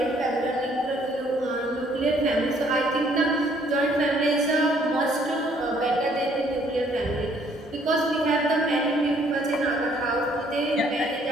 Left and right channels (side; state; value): both; normal; correlation 0.64